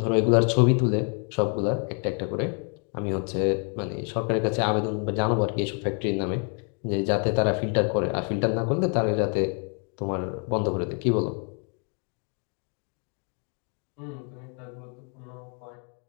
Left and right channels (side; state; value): right; quieter; 37.6 dB